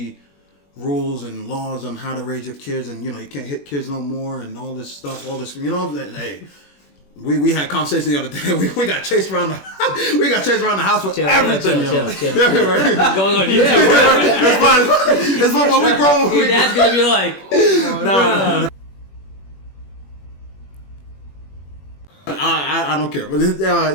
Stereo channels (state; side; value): late; right; 21 ms